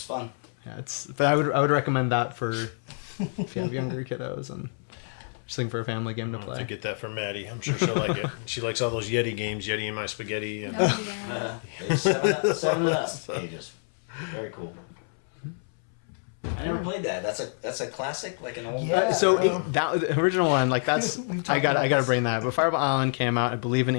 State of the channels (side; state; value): right; silent; 60 dB below the other